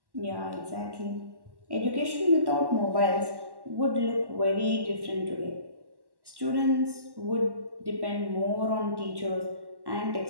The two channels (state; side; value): late; left; 1.1 ms